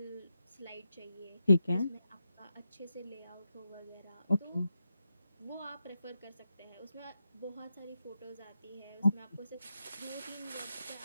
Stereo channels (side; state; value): both; inverted; correlation -0.87